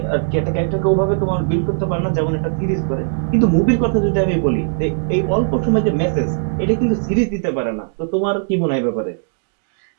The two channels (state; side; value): silent; left; digital silence